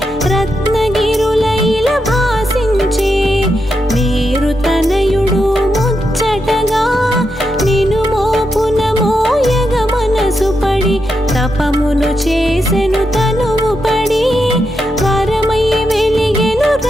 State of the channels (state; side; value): normal; both; correlation 0.84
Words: రత్నగిరులైల భాసించే మేరు తనయుడు ముచ్చటగా నిను మోపున మోయగ మనసు పడి తపమును చేసెను తనువు పడి వరమై వెలిగెను